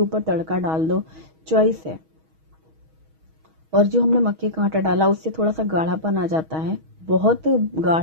तड़का डाल दो, चॉइस है। और जो हमने मक्के का आटा डाला उससे थोड़ा सा गाढ़ापन आ जाता है, बहुत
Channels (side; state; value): left; late; 6.3 ms